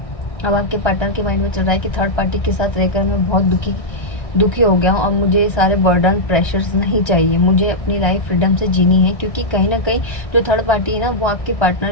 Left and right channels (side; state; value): right; late; 1.6 ms